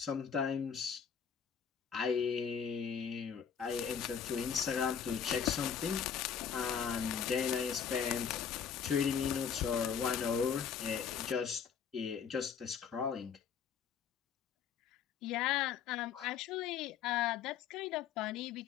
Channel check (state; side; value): quieter; right; 7.4 dB